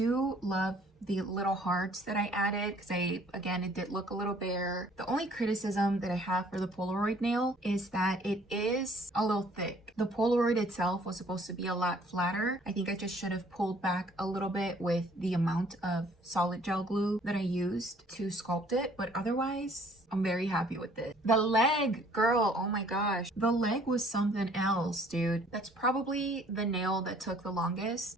love the little hearts that I added because again, it did look a little bare. The only criticism that I have for the Polaroid nail is that it is a little thick. The Polaroid itself was supposed to be a lot flatter. I think I just should have pulled back a little bit with the amount of solid gel glue that I used to sculpt it, but otherwise, I'm very happy with it. The leg, girl, oh my gosh. The leg was something else, dude. That's probably the nail that took the longest.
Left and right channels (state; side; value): normal; both; correlation 0.58